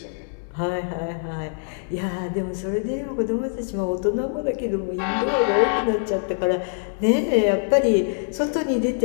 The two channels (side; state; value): right; silent; digital silence